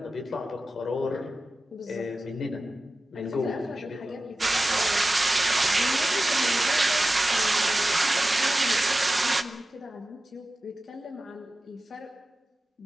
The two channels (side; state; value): both; normal; correlation 0.94